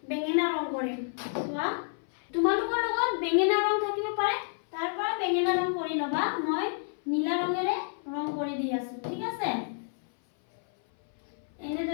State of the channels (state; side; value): silent; right; 57 dB below the other